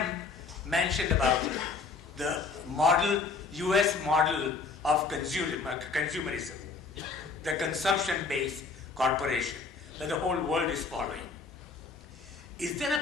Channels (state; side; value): quieter; right; 4.5 dB